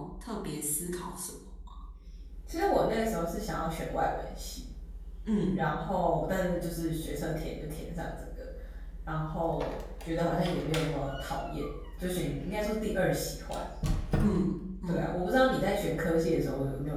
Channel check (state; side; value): identical; both; correlation 1.00